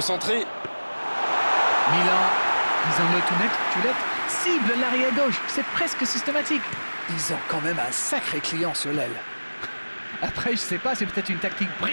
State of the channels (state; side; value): inverted; both; correlation -1.00